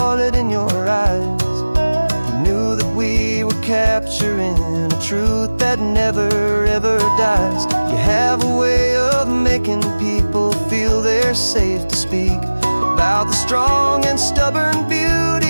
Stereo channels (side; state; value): both; inverted; correlation -1.00